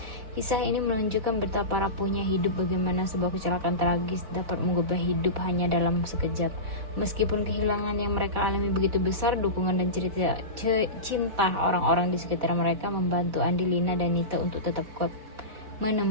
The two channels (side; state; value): left; late; 4.1 ms